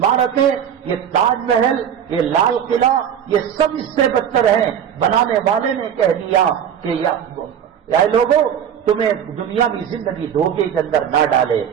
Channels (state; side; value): quieter; left; 8.9 dB